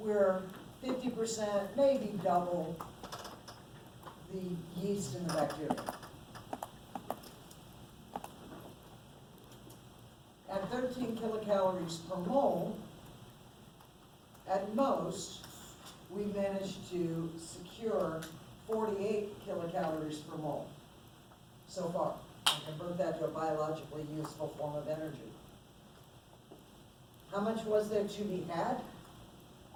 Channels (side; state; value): both; identical; correlation 1.00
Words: 50%, maybe double the yeast and the bacteria. At 13 kilocalories per mole, at most, we managed to secure 48 kilocalories per mole so far, and convert that to a biologically useful form of energy. How much was there to be had?